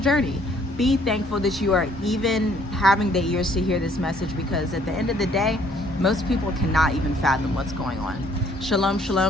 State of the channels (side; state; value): both; normal; correlation 0.62